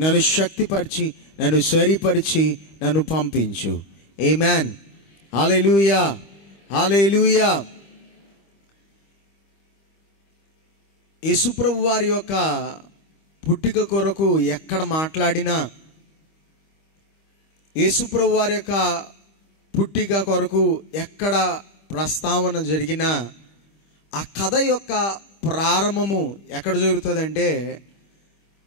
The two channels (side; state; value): right; late; 25 ms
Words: నన్ను శక్తిపరిచి, నన్ను సరిపరిచి, నన్ను పంపించు. ఆమేన్. హల్లెలూయా, హల్లెలూయా. యేసుప్రభు వారి యొక్క పుట్టిక కొరకు ఎక్కడ మాట్లాడినా, యేసుప్రభు వారి యొక్క పుట్టిక కొరకు ఎక్కడ ప్రస్తావన జరిగినా, ఆ కథ యొక్క ప్రారంభము ఎక్కడ జరుగుతుందంటే,